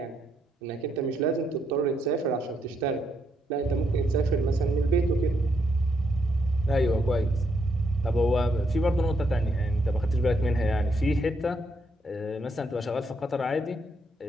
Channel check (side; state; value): both; normal; correlation 0.77